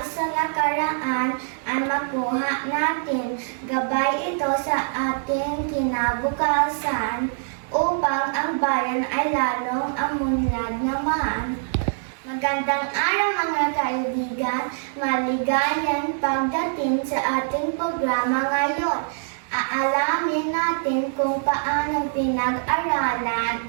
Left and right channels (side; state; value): left; silent; digital silence